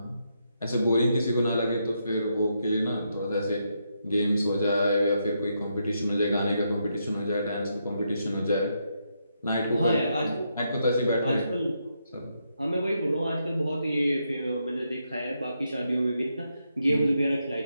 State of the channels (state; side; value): inverted; both; correlation -0.80